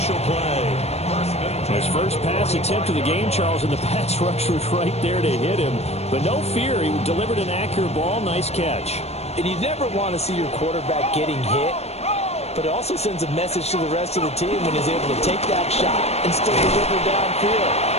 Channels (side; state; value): right; late; 0.31 ms